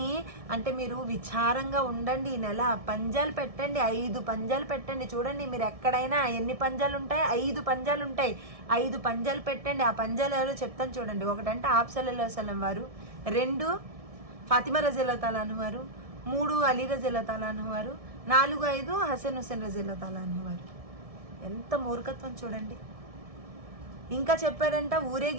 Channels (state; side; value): late; left; 1.6 ms